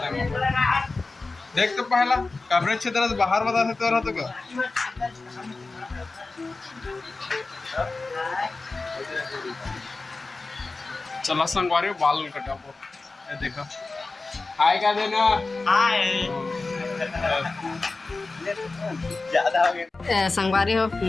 हैं देख तो पहला कवरेज क्षेत्र से बाहर बता सकते रहा तो क्या चला संगवारी बाल कटाबो देखा हाय का देना हाय ज्यादा हो गया संगवारी हो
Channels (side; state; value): right; quieter; 3.6 dB